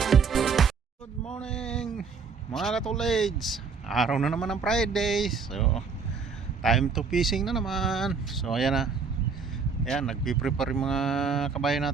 Good morning mga katuleds. Araw na naman ng Friday. So time to fishing na naman. So ayan na. Ayan, nagpiprepare yung mga kabayan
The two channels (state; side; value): quieter; left; 5.4 dB